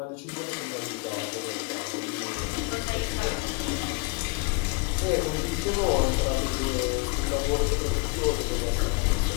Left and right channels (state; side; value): quieter; right; 28.3 dB